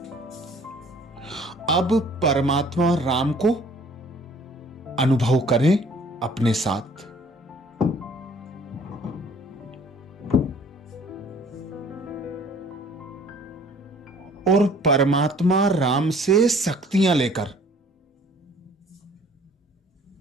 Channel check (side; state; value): both; normal; correlation 0.54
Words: अब परमात्मा राम को अनुभव करें अपने साथ। और परमात्मा राम से शक्तियां लेकर